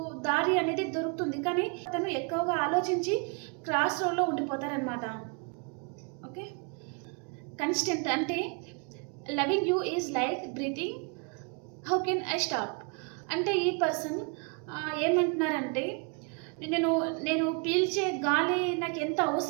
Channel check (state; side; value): quieter; left; 35.7 dB